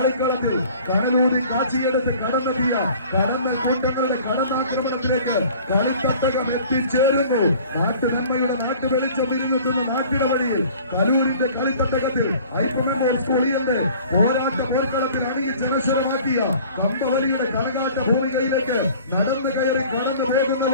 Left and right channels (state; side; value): inverted; both; correlation -0.48